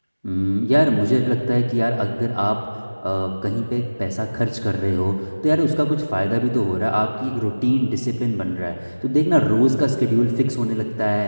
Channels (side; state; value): both; inverted; correlation -1.00